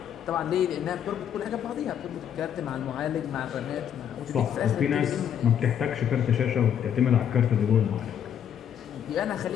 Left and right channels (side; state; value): right; quieter; 9.1 dB